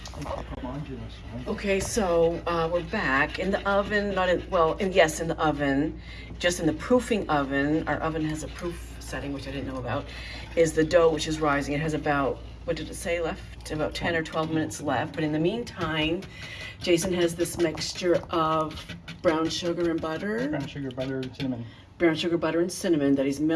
Okay, so we're back in the oven, not in, well, in, yes, in the oven, just in the proofing oven. Our oven has a proof setting, which I didn't know about, is the dough, which is rising. It has about, what did it say left? About 10 or 12 minutes left. But in the meantime, Jason has this mixture of brown sugar and butter. Brown sugar, butter, and cinnamon. Brown sugar, butter, and cinnamon that he's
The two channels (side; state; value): both; identical; correlation 1.00